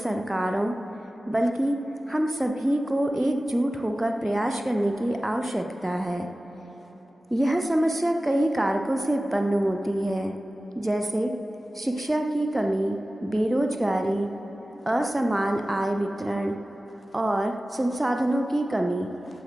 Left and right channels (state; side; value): normal; both; correlation 0.96